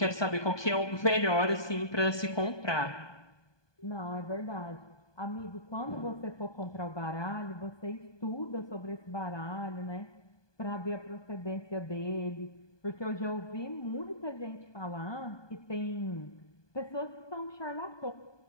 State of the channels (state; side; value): late; right; 1.2 ms